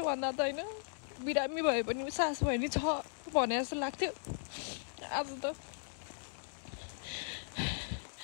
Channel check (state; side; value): silent; right; digital silence